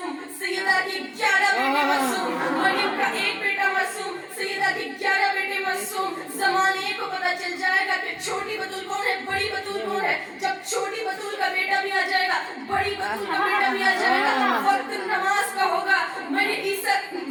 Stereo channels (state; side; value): identical; both; correlation 1.00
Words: सैयदा के 11 बेटे मासूम। मरियम का एक बेटा मासूम, सैयदा के 11 बेटे मासूम। ज़माने को पता चल जाएगा कि छोटी बतूल कौन है, बड़ी बतूल कौन है। जब छोटी बतूल का बेटा भी आ जाएगा, बड़ी बतूल का बेटा भी आ जाएगा। वक्त नमाज का होगा, मेरे ईसा